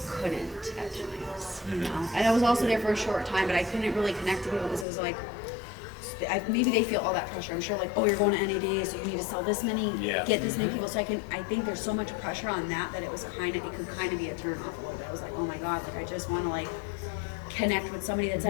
couldn't at times. And I was also there for a short time, but I couldn't really connect to people because it was like. Maybe they feel all that pressure. I'm sure, like, oh, you're going to NADA, so you need to sell this many, Yeah. get this many people. So I think there's so much pressure on that it could kind of be a turn off a little bit. I was like, oh my god, like I just want to like connect with somebody that's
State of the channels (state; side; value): drops out; right; at 4.9 s